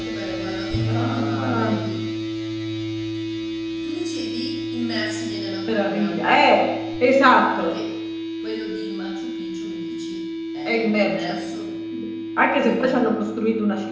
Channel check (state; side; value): identical; both; correlation 1.00